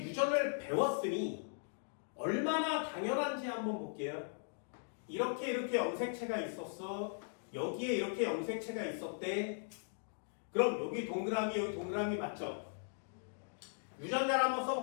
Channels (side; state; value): right; silent; digital silence